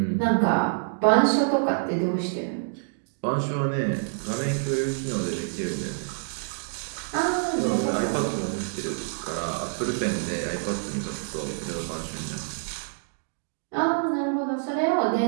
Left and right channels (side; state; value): left; silent; digital silence